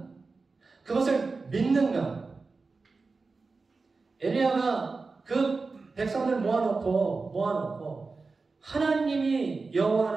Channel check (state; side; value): quieter; left; 4.1 dB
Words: 그것을 믿는가? 엘리야가 그 백성들 모아놓고 하나님이 여호와